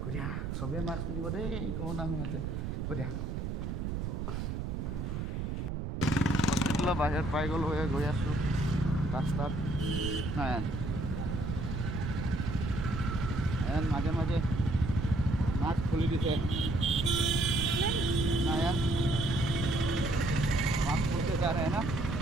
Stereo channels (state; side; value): noise; right; rumble, 3 dB below the sound